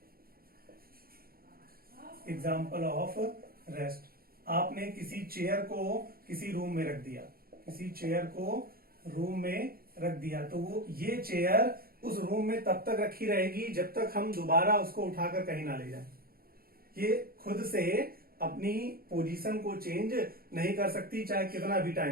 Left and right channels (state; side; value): late; left; 0.43 ms